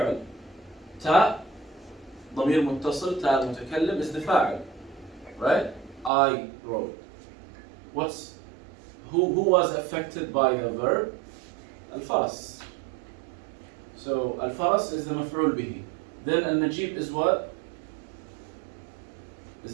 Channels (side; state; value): left; drops out; at 6.1 s